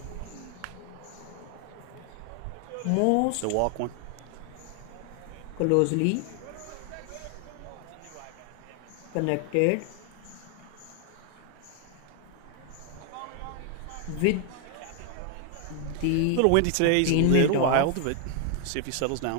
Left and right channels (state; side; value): different; both; correlation 0.00